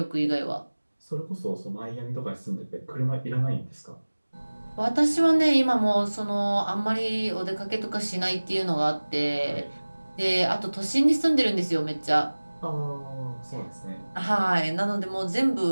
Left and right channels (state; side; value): inverted; both; correlation -1.00